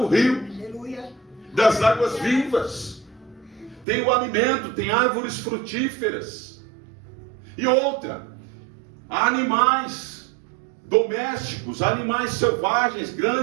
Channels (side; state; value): left; drops out; at 3.9 s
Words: rio das águas vivas. Tem o alimento, tem árvores frutíferas. E outra, há animais domésticos, animais selvagens,